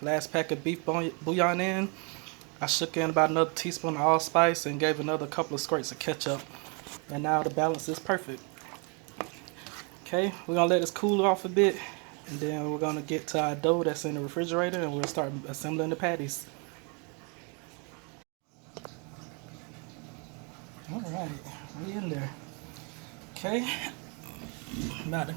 pack of beef bouillon in. I shook in about another teaspoon of allspice and gave another couple of squirts of ketchup. And now the balance is perfect. Okay, we're gonna let this cool off a bit, and then we're gonna get to our dough that's in the refrigerator, and we'll start assembling the patties. Alright, we in there. Okay, I'm about to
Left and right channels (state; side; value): quieter; left; 34.6 dB